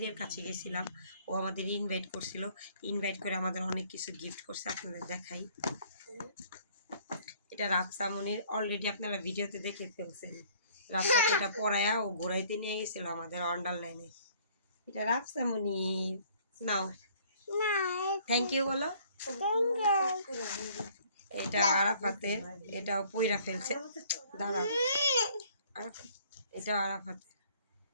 কাছে গেছিলাম। ও আমাদের ইনভাইট করছিল, ইনভাইট করে আমাদের অনেক কিছু গিফট করছে। আপনাদের দেখাই, এটা রাফসা মনির। অলরেডি আপনারা ভিডিওতে দেখে ফেলছেন, রাফসাকে এটা পরায়া ও ঘোরাইতে নিয়ে গেছিল আমাদের আন্ডারলাইনে। এটা রাফসা মনির, নাও থ্যাংক ইউ বলো। এটা আরাফাতের, এটাও পয়রা ফেলছে, দাঁড়াও। এটা আরাফাতের,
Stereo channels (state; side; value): inverted; both; correlation -0.58